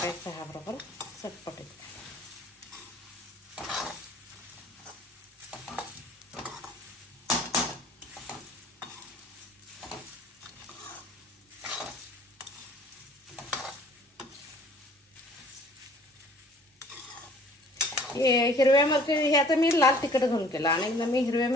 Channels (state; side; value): normal; both; correlation 0.53